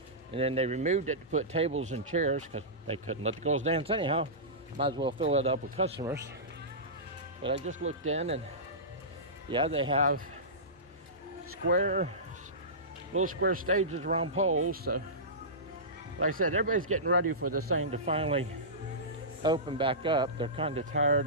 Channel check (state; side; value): normal; both; correlation -0.19